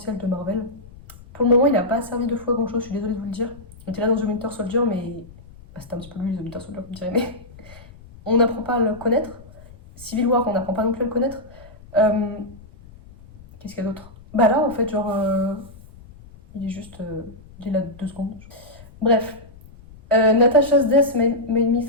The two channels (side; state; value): left; noise; rumble, 21 dB below the sound